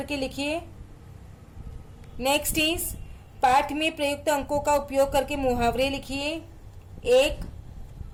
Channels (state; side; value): identical; both; correlation 1.00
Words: लिखिए। नेक्स्ट इज पाठ में प्रयुक्त अंकों का उपयोग करके मुहावरे लिखिए।